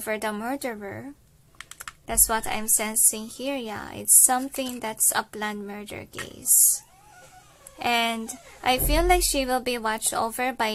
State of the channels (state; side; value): identical; both; correlation 1.00